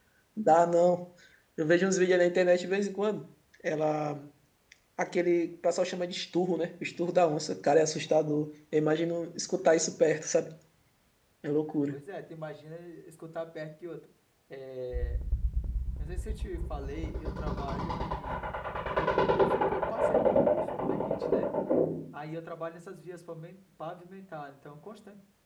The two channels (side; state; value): both; identical; correlation 1.00